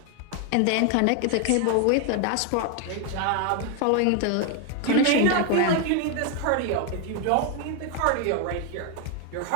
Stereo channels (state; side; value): different; both; correlation 0.01